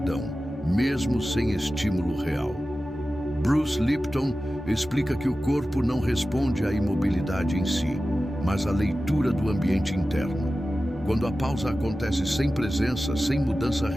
mesmo sem estímulo real. Bruce Lipton explica que o corpo não responde à imobilidade em si, mas à leitura do ambiente interno. Quando a pausa acontece sem presença, sem mudança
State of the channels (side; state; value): both; normal; correlation 0.94